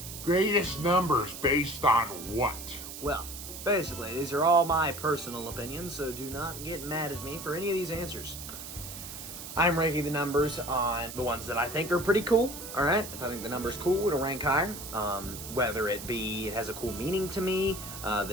greatest numbers based on what? well, basically, these are all my personal opinions, so do not get mad at me for any of these answers. I'm ranking the numbers on the ones that I think are pretty cool, alright? If I think the number's cool, it'll rank higher. Whether it be it has a cool meaning to me,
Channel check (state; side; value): noise; right; hiss, 10 dB below the sound